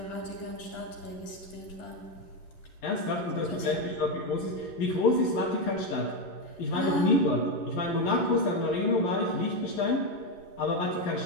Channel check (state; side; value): late; right; 11 ms